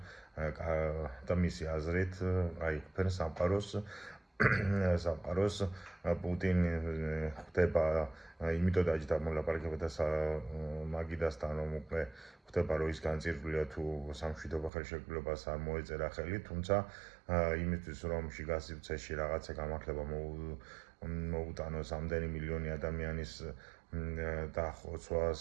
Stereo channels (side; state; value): left; drops out; at 14.7 s